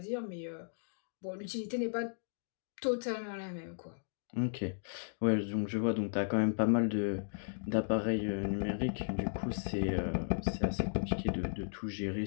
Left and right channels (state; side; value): silent; right; digital silence